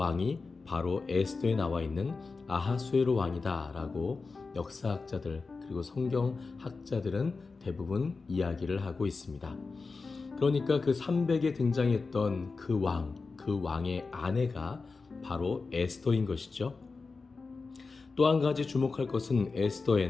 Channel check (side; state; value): right; quieter; 4.2 dB